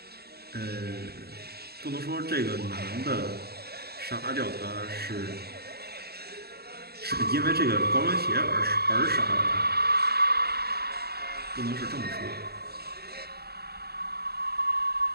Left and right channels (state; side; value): late; left; 0.46 ms